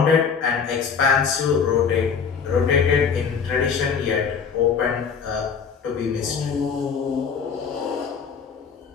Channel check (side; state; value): right; quieter; 6.3 dB